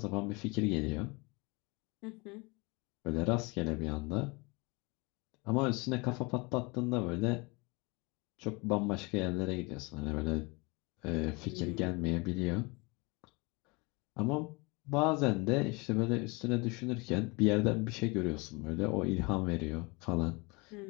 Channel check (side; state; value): right; quieter; 27.3 dB